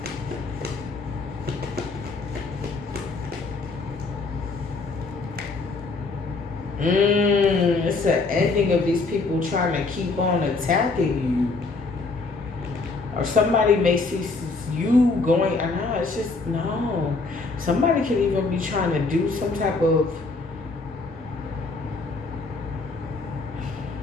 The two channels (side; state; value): right; quieter; 3.8 dB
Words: It's an ending of these people trying to keep on attacking you. Or somebody may see you going, no, it's just, no. Somebody could even be trying to do some type of,